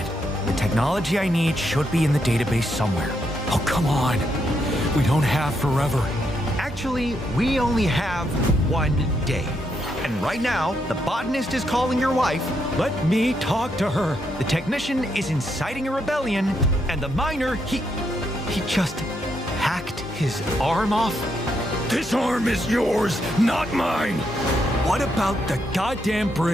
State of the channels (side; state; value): both; normal; correlation 0.79